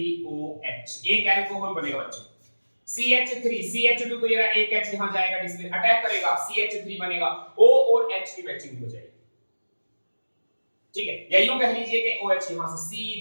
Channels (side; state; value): both; inverted; correlation -1.00